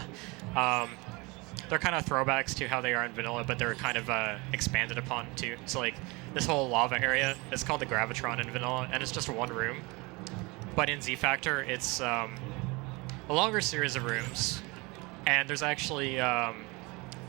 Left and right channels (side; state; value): left; quieter; 26.0 dB